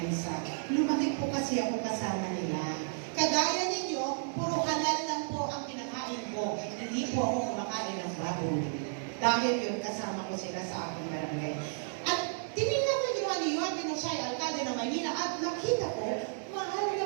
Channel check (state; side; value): silent; left; 56 dB below the other